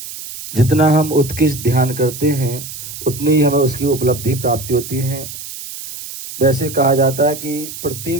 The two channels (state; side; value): noise; right; hiss, 11 dB below the sound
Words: जितना हम उत्कृष्ट ध्यान करते हैं उतनी ही हमें उसकी उपलब्धि प्राप्ति होती है। वैसे कहा जाता है कि